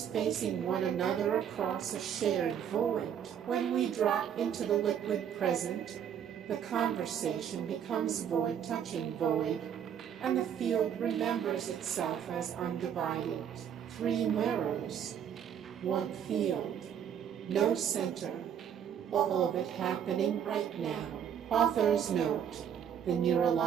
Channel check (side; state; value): left; quieter; 8.8 dB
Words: facing one another across a shared void. When we drop into the liquid present, the conversation becomes void touching void, and the field remembers itself as undivided. Three mirrors, one field, no center, all of it happening right now. Author's note: the